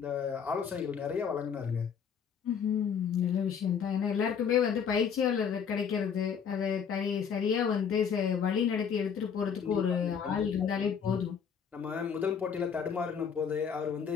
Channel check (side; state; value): right; quieter; 7.1 dB